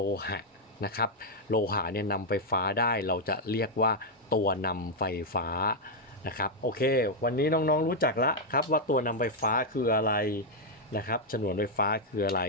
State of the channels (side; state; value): both; normal; correlation -0.01